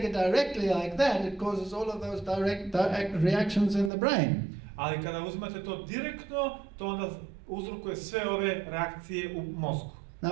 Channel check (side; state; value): left; drops out; at 3.9 s